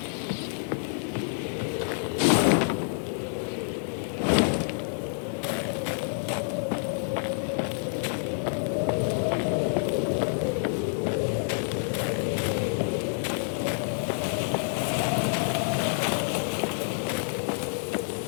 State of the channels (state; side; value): silent; right; 59 dB below the other